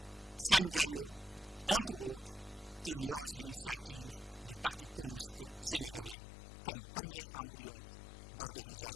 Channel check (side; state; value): right; drops out; at 6.2 s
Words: Sam Diallo, entre autres, il lance l'initiative du Parti communiste sénégalais comme premier embryon